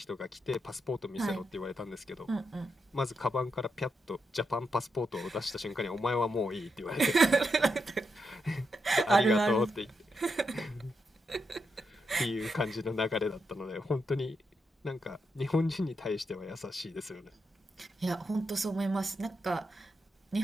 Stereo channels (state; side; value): normal; both; correlation 0.83